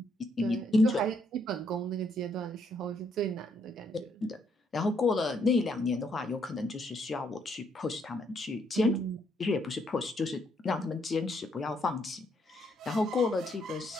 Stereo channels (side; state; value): both; normal; correlation 0.73